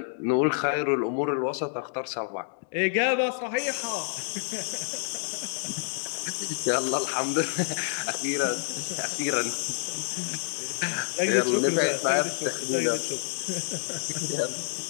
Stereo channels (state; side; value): silent; right; digital silence